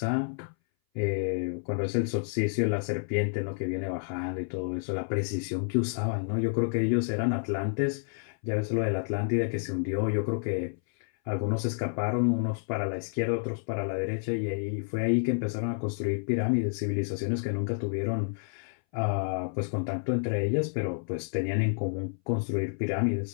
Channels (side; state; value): right; silent; 58 dB below the other